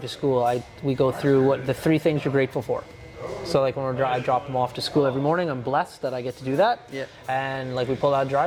school. We go through what the 3 things you're grateful for. So like when I drop him off to school every morning, I'm blessed that I get to do that. Yeah. And like we pull out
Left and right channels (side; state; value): both; identical; correlation 1.00